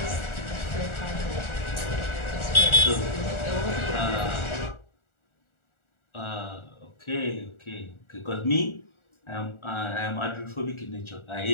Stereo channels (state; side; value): late; right; 1.4 ms